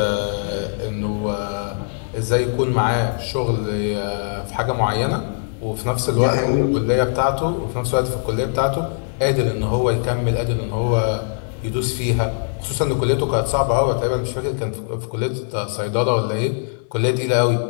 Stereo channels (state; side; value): silent; right; digital silence